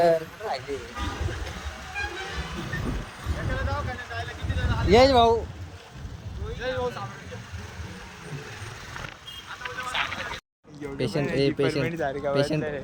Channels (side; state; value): both; identical; correlation 1.00